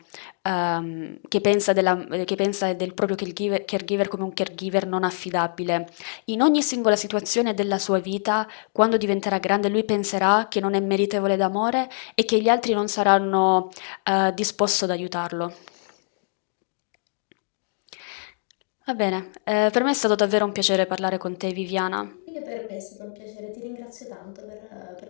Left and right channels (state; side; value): silent; right; digital silence